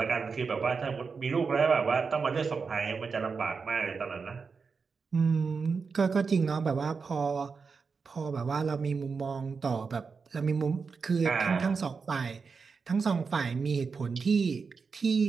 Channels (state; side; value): quieter; left; 5.1 dB